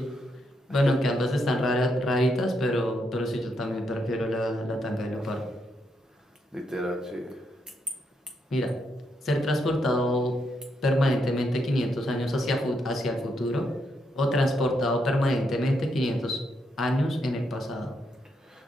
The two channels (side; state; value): both; normal; correlation 0.79